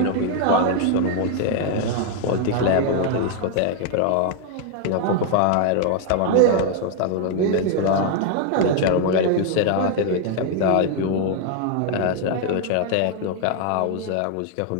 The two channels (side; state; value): both; different; correlation 0.00